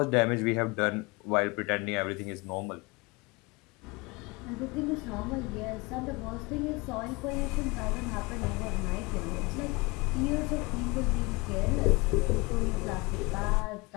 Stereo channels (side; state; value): right; quieter; 25.7 dB